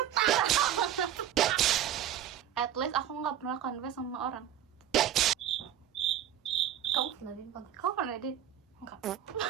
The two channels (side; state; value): left; quieter; 10.7 dB